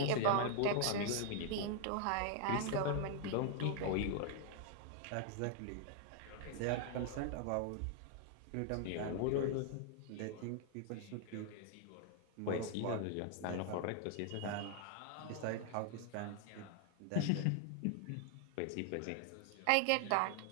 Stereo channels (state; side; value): different; both; correlation 0.00